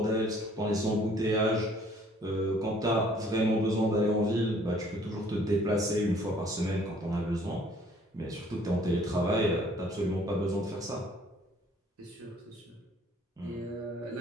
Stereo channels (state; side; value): normal; both; correlation 0.59